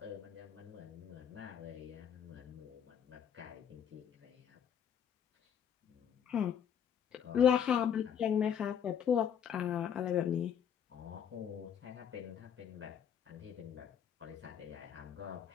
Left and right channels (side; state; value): right; quieter; 8.5 dB